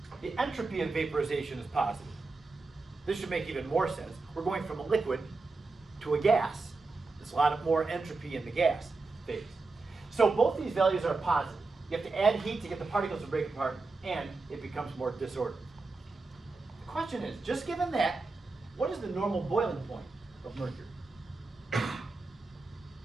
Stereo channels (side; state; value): left; quieter; 3.8 dB